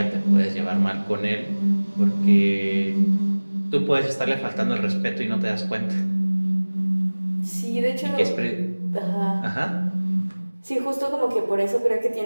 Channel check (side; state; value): both; inverted; correlation -1.00